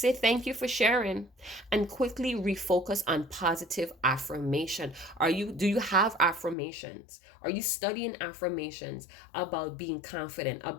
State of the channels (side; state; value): right; drops out; at 6.6 s